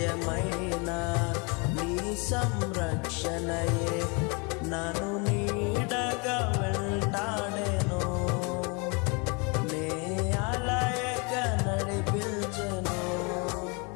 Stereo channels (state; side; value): quieter; right; 31.6 dB